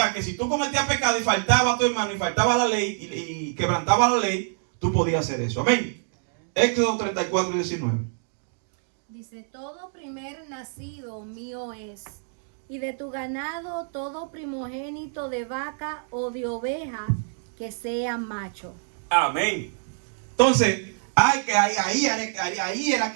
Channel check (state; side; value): silent; left; digital silence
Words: que si tú cometías pecado y faltaba a tu hermano y faltaba la ley y quebrantaba la ley, tú podías hacer eso. Amén. Éxodo 34, 19. Dice, todo primer nacido mío es, y de tu ganado todo primogénito de vaca o de oveja que sea macho. Amén. Entonces, ahí era